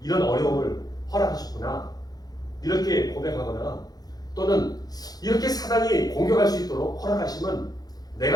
어려움을 허락하셨구나. 이렇게 고백하거나 또는 이렇게 사단이 공격할 수 있도록 허락하시면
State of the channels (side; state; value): right; late; 0.19 ms